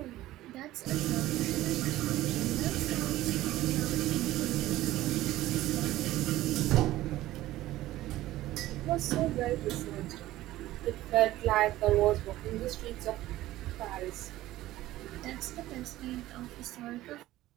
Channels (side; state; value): left; quieter; 15.7 dB